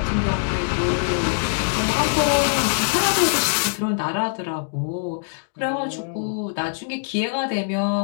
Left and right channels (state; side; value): silent; right; digital silence